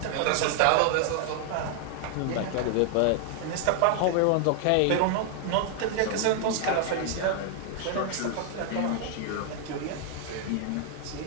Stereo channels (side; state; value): both; different; correlation 0.00